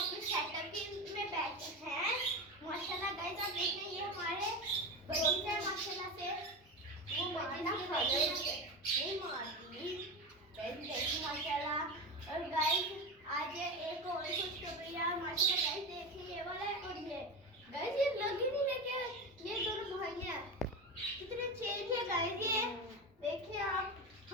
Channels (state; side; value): normal; both; correlation 0.22